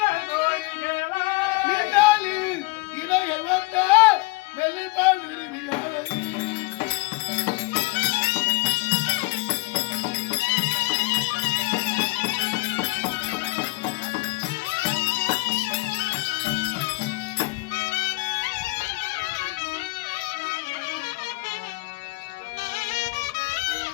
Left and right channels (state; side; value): quieter; right; 23.6 dB